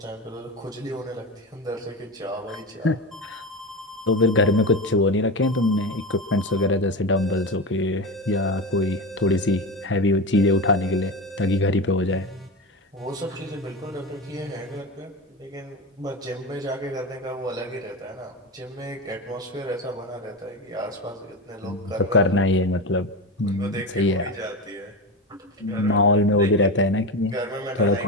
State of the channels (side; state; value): both; normal; correlation 0.21